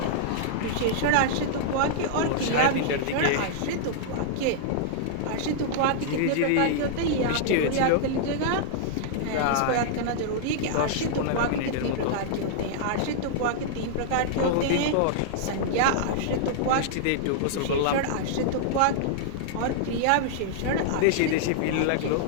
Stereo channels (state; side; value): different; both; correlation -0.01